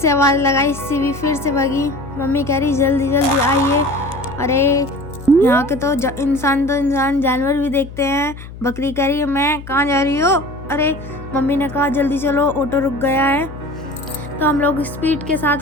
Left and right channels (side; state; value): left; noise; hum, 14 dB below the sound